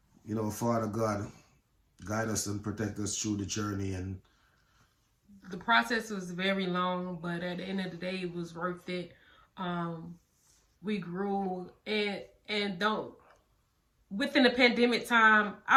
you know, Father God, guide us and protect us through the journey. And the process was very long, but at the end of the day, it was worth it. We grew, and don't within the pandemic time,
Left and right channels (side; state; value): both; identical; correlation 1.00